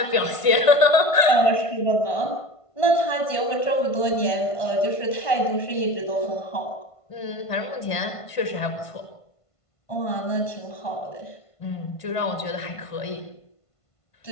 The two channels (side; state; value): right; late; 1.5 ms